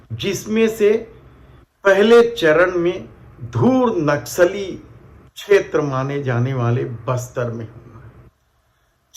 जिसमें से पहले चरण में धूर नक्सली क्षेत्र माने जाने वाले बस्तर में होना है।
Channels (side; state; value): both; identical; correlation 1.00